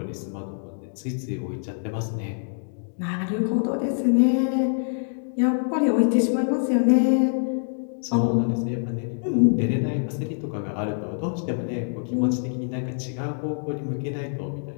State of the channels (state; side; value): silent; right; digital silence